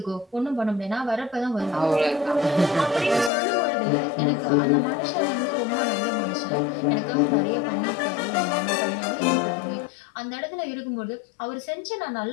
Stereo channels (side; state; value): right; drops out; at 3.3 s